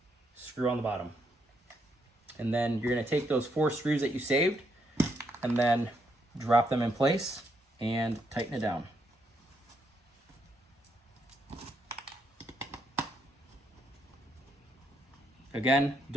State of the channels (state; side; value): normal; both; correlation 0.76